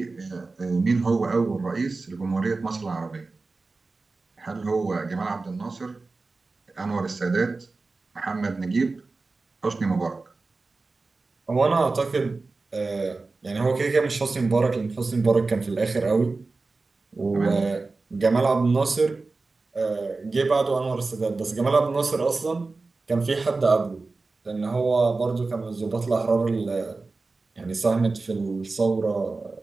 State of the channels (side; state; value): left; quieter; 3.7 dB